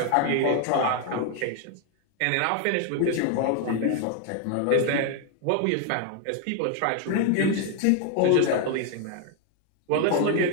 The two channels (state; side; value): different; both; correlation 0.01